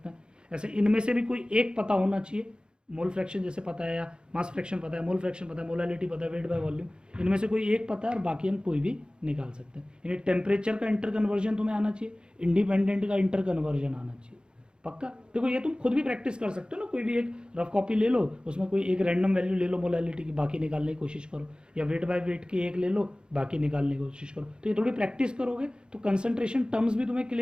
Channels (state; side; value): late; left; 0.050 ms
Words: हैं। ऐसे इनमें से भी कोई एक पता होना चाहिए, मोल फ्रैक्शन जैसे पता है, या मास फ्रैक्शन पता है, मोल फ्रैक्शन पता है, मोलैलिटी पता है, वेट बाय वॉल्यूम, इनमें से कोई एक पता है और बाकी हम कोई भी निकाल सकते हैं। यानी टेम्परेचर का इंटर कन्वर्जन तुम्हें आना चाहिए, इंडिपेंडेंट का इंटर कन्वर्जन आना चाहिए, पक्का। देखो ये तुम खुद भी प्रैक्टिस कर सकते हो ना, कोई भी एक रफ कॉपी ले लो, उसमें कोई एक रैंडम वैल्यू ले लो मोलैलिटी की, बाकी निकालने की कोशिश करो, या वेट बाय वेट की एक ले लो, बाकी निकालने की कोशिश करो। तो ये थोड़ी प्रैक्टिस करोगे तो कंसंट्रेशन टर्म्स भी तुम्हें